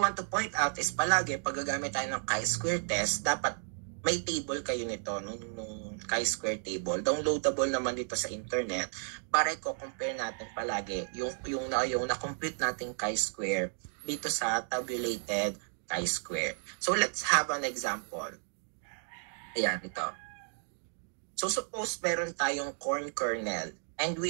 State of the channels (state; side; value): silent; left; 56 dB below the other